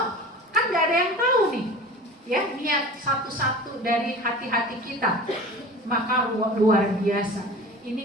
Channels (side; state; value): both; normal; correlation 0.38